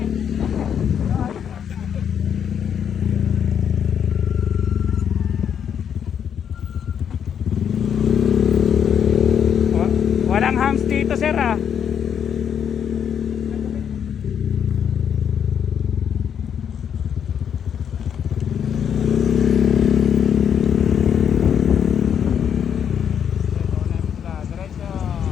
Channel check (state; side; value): quieter; right; 8.3 dB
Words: Walang hams dito, sir, ah. Diretso.